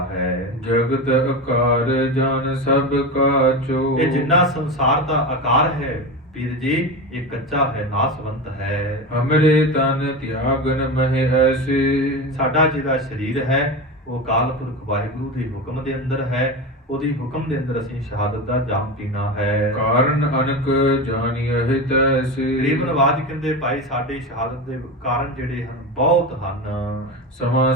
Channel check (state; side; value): normal; both; correlation 0.22